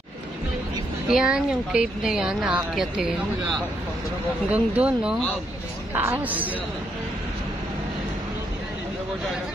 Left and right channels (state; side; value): normal; both; correlation 0.76